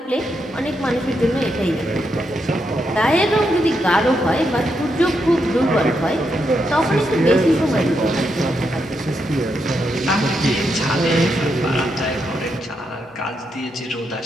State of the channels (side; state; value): both; normal; correlation 0.82